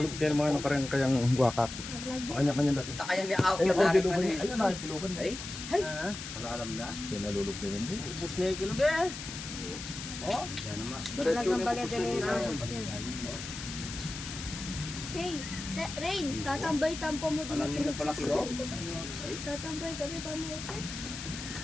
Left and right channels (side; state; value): left; noise; hiss, 9 dB below the sound